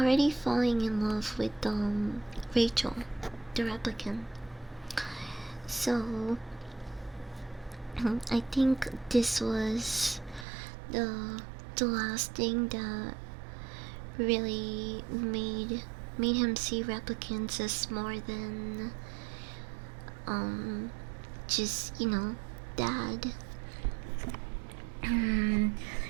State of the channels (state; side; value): drops out; left; at 10.5 s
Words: falling in love with Rachel, the replicant. So I think this was the last thing that really made him see replicants as more than just, dad.